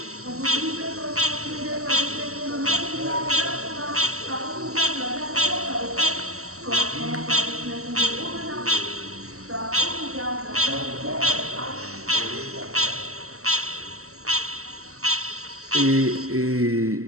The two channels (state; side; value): late; left; 0.64 ms